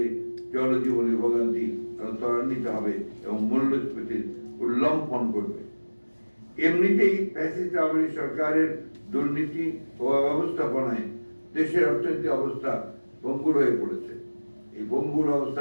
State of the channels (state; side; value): inverted; both; correlation -1.00